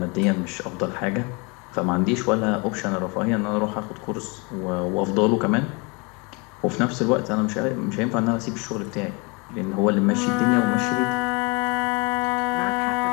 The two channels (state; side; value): quieter; right; 30.0 dB